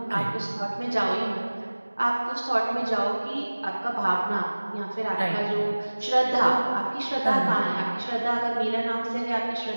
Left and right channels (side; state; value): both; inverted; correlation -1.00